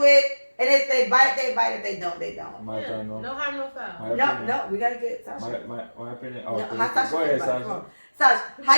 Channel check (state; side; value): inverted; both; correlation -1.00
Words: it. And if they bite, they bite. If they don't, they don't. No harm, no foul. No, we got to get Sasha. My opinion. Oh, no, how Sasha go ahead, Sasha. Sasha,